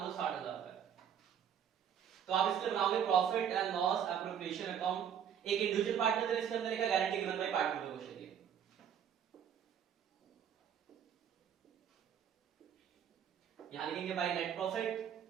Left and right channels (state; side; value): quieter; left; 8.6 dB